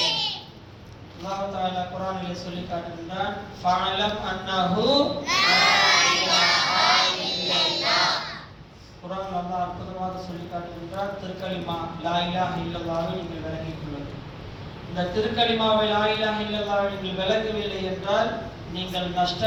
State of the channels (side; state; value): both; identical; correlation 1.00